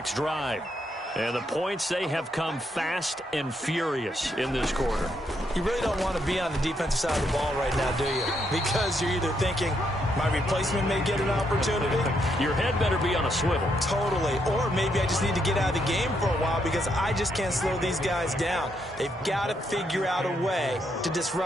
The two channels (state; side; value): normal; both; correlation 0.77